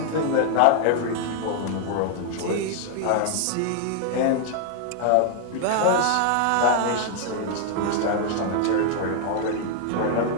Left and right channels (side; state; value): both; different; correlation 0.00